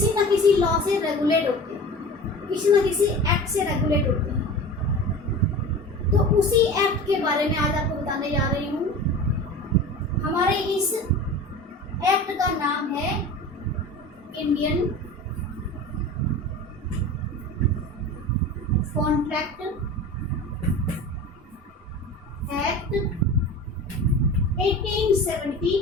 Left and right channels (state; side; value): normal; both; correlation 0.35